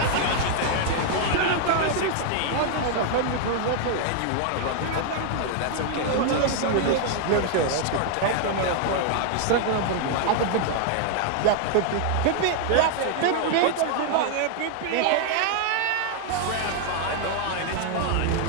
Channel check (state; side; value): different; both; correlation 0.00